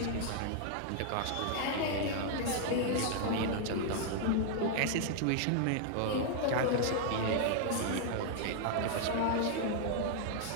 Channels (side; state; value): both; different; correlation 0.00